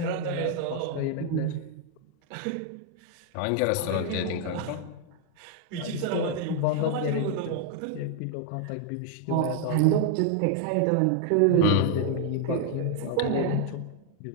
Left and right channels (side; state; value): both; different; correlation 0.00